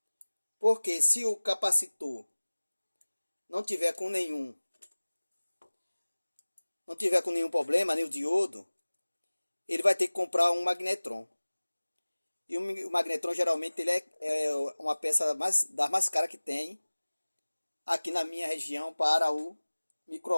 Porque se o capacitor não tiver com nenhum problema, nem o diodo, ele vai ter que comprar um magnetron. E o magnetron geralmente ele é uma peça das mais caras que tem aqui na minha região para o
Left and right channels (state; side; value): inverted; both; correlation -1.00